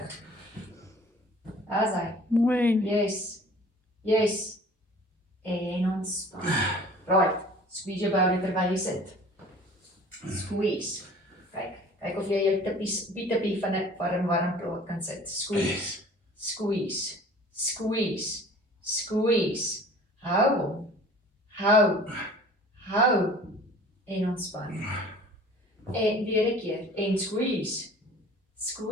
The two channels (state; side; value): normal; both; correlation 0.47